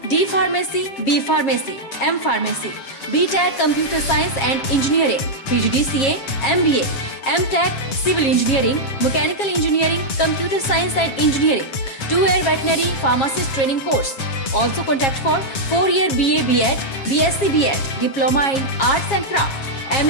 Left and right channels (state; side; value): late; right; 7.4 ms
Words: D Pharmacy, B Pharmacy, M Pharmacy, BTech Computer Science and Engineering, PGDCA, MBA, MTech Civil Engineering, Mechanical Engineering, Computer Science and Engineering, 2-year Veterinary Pharmacist Training Course. Also contact for 4-year BA BEd, BSc BEd, Diploma in Arts and Craft,